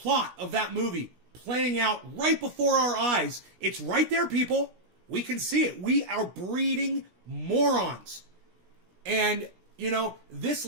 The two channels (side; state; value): left; late; 17 ms